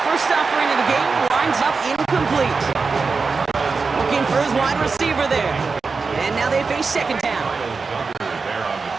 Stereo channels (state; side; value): quieter; left; 4.6 dB